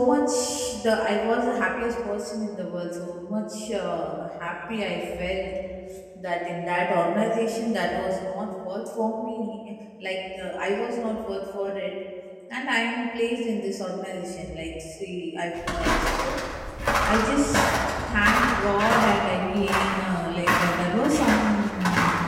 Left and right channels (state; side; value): identical; both; correlation 1.00